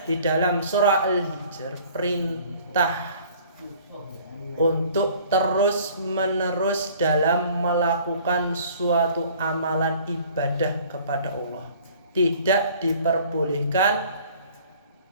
di dalam surah Al-Hijr perintah untuk terus menerus dalam melakukan suatu amalan ibadah kepada Allah. Tidak diperbolehkan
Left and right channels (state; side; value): inverted; both; correlation -0.52